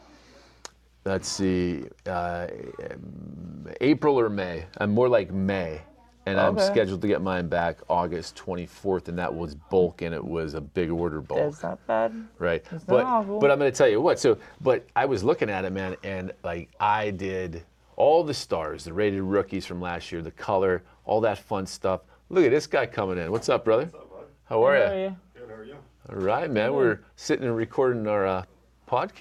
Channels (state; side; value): identical; both; correlation 1.00